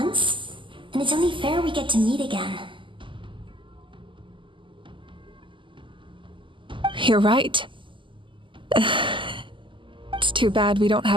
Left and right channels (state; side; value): late; left; 0.25 ms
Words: then it's only fair we get to meet again. You're right. It's too bad we don't